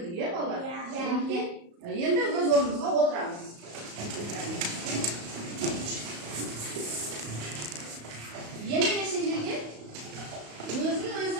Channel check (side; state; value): left; late; 35 ms